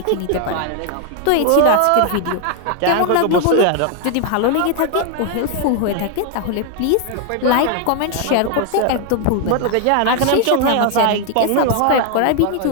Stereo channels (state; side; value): different; both; correlation 0.00